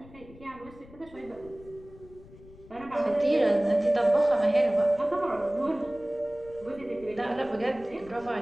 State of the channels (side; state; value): left; noise; rumble, 21 dB below the sound